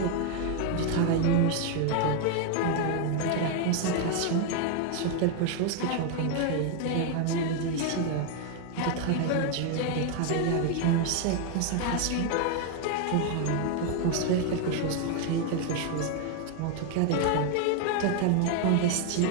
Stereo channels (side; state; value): both; different; correlation 0.00